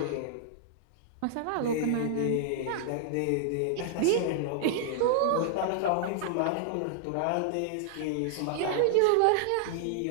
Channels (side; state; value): both; different; correlation -0.01